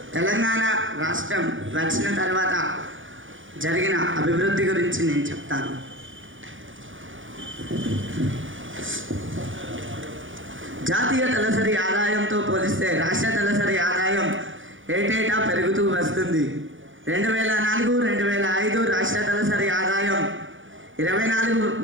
Telangana రాష్ట్రం వచ్చిన తర్వాత జరిగిన అభివృద్ధి గురించి నేను చెప్తాను. జాతీయ తలసరి ఆదాయంతో పోలిస్తే రాష్ట్ర తలసరి ఆదాయం ఏటేటా పెరుగుతూ వస్తుంది. 2004-2005 రాష్ట్ర తలసరి ఆదాయం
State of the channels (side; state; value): left; late; 0.57 ms